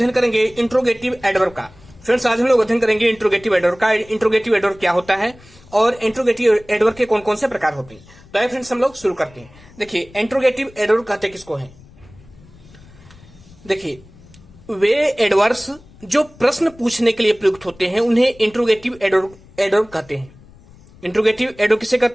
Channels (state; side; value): noise; left; rumble, 24 dB below the sound